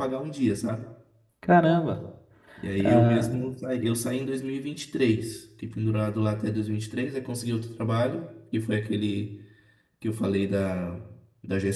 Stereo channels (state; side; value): identical; both; correlation 1.00